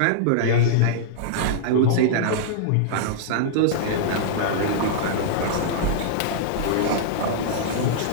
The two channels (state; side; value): different; both; correlation -0.02